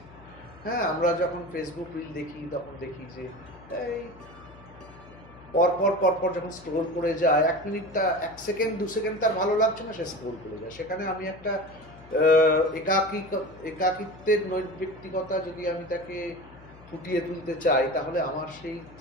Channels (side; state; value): left; noise; hum, 21 dB below the sound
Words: হ্যাঁ, আমরা যখন ফেসবুক রিল দেখি তখন দেখি যে এই পরপর যখন স্ক্রোল করে যায়, 1 মিনিট, 1 সেকেন্ড 2 সেকেন্ড তার ভালো লাগছে না, সে স্ক্রোল করে যায়। সেখানে আমি একটা একাকিত্বের নৈর্ব্যক্তিকতা যদি আমি তাকে ফুটিয়ে তুলতে চাই, তাহলে আমার সেই